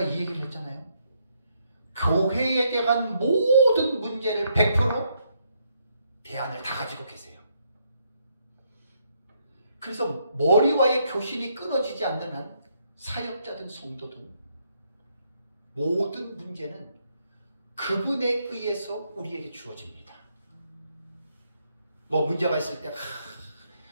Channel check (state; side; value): inverted; both; correlation -0.74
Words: 이 얘기를 했잖아요. 교회에 대한 모든 문제를 100% 대안을 다 가지고 계세요. 그래서 머리와의 교신이 끊어지지 않는 한 사역자든 성도든 모든 문제는 그분에 의해서 우리에게 주어집니다. 뭐 문제가 있을 때